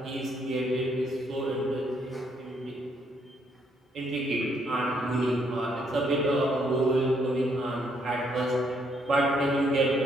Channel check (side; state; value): both; normal; correlation 0.71